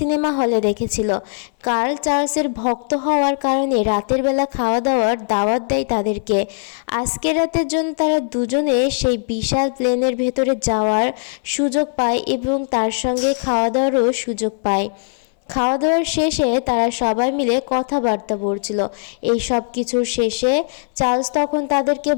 হলে দেখেছিল। কার্ল চার্লসের ভক্ত হওয়ার কারণে রাতের বেলা খাওয়া দাওয়ার দাওয়াত দেয় তাদেরকে। আজকের রাতের জন্য তারা দুজনে সেই বিশাল প্লেনের ভেতরে যাওয়ার সুযোগ পায় এবং তার সঙ্গে খাওয়া দাওয়ারও সুযোগ পায়। খাওয়া দাওয়ার শেষে তারা সবাই মিলে কথাবার্তা বলছিল। এই সব কিছুর শেষে চার্লস তখন তাদেরকে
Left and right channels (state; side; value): silent; right; 66 dB below the other